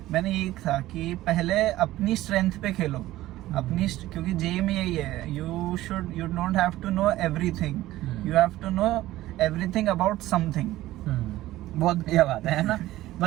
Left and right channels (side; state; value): left; quieter; 15.8 dB